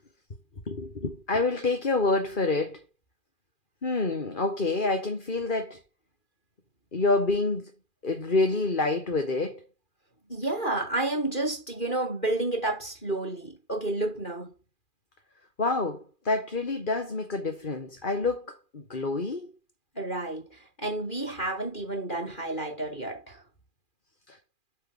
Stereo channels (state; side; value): late; right; 2.4 ms